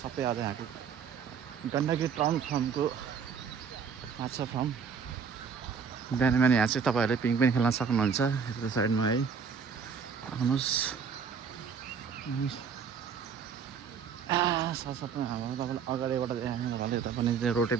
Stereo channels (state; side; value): quieter; left; 6.4 dB